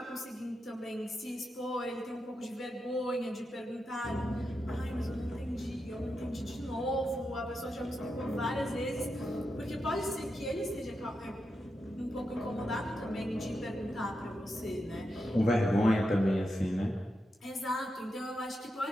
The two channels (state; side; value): normal; both; correlation 0.87